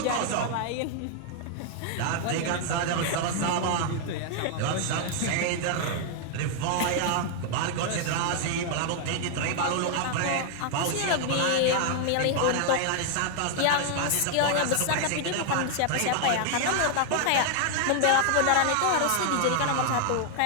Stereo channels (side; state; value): both; different; correlation 0.00